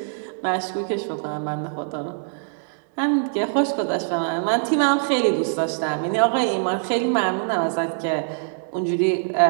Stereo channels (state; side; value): silent; left; digital silence